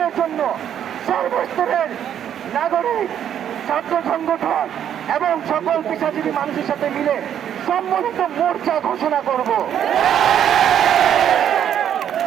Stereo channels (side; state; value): left; quieter; 9.6 dB